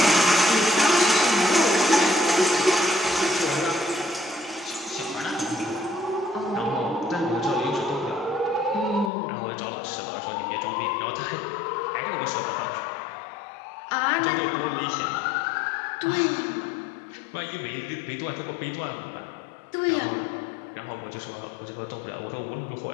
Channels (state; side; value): drops out; right; at 9.1 s